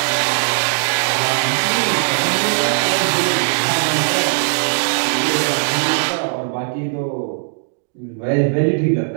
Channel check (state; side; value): silent; left; digital silence